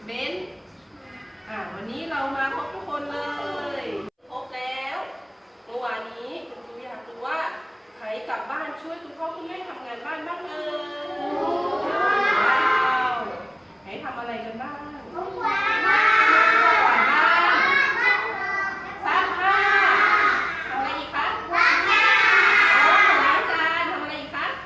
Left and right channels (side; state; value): both; identical; correlation 1.00